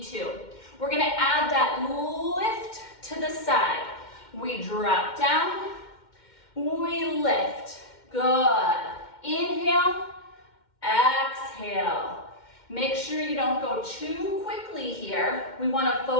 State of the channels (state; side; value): late; right; 2.1 ms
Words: to. We're gonna add that lift to the side. We drop down, we lift. Good. Inhale, exhale. Make sure you don't go too quickly here. We wanna